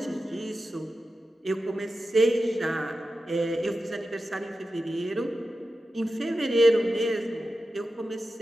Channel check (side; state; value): both; normal; correlation 0.91